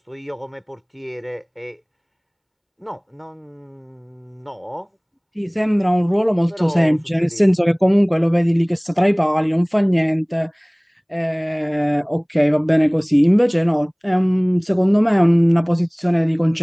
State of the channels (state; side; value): identical; both; correlation 1.00